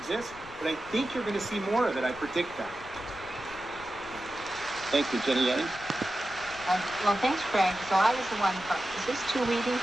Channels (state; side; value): noise; left; rumble, 19 dB below the sound